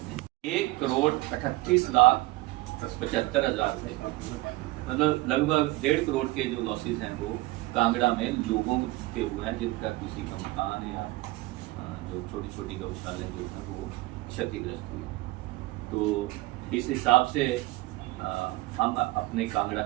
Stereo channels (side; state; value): left; quieter; 20.1 dB